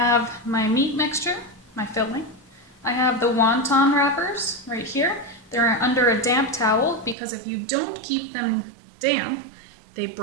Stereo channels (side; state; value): left; drops out; at 7.2 s